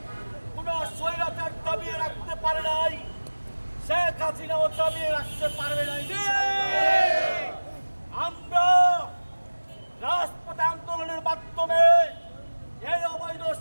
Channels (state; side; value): inverted; both; correlation -1.00